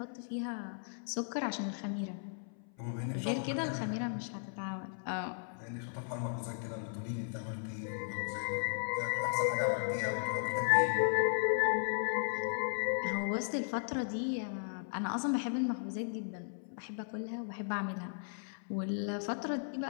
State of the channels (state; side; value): silent; right; 54 dB below the other